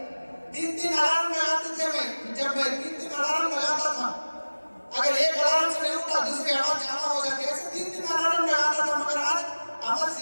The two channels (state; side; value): inverted; both; correlation -1.00